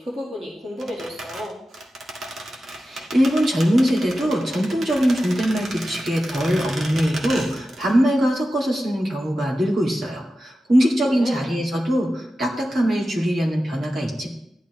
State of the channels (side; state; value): both; normal; correlation 0.93